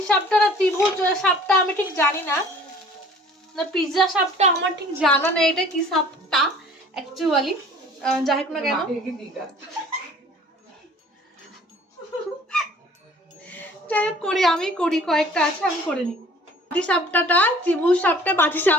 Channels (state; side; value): normal; both; correlation 0.50